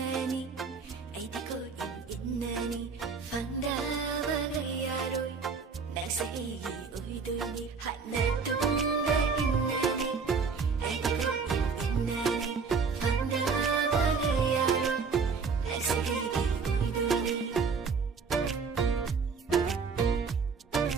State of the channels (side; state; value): left; quieter; 5.2 dB